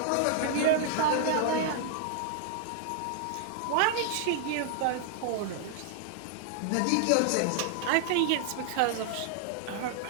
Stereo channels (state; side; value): different; both; correlation -0.01